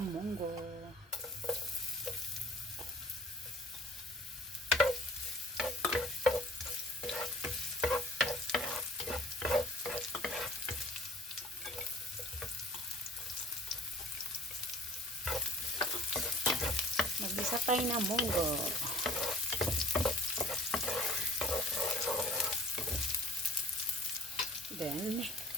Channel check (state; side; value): normal; both; correlation 0.50